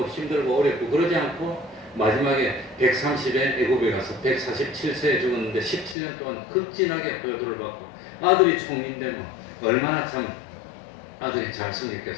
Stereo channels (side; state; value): right; drops out; at 6.0 s